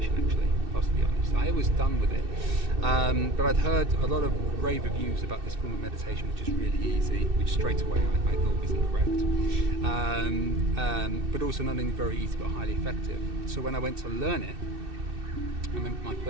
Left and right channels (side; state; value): left; late; 2.6 ms